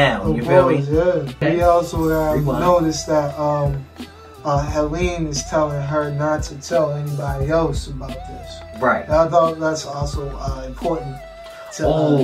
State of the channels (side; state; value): both; identical; correlation 1.00